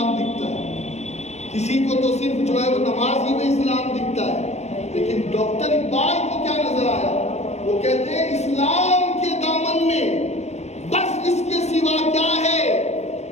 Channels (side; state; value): right; late; 0.32 ms